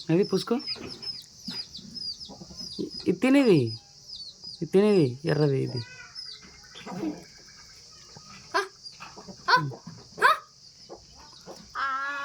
అది పుసుకో. ఇది తినేది ఎర్రది ఇది.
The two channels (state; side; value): identical; both; correlation 1.00